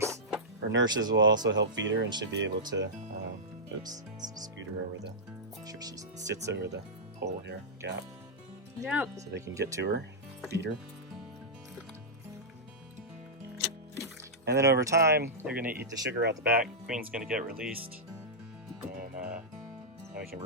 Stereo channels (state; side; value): normal; both; correlation -0.11